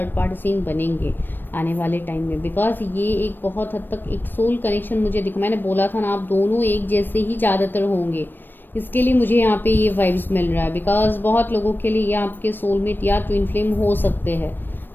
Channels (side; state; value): right; late; 0.094 ms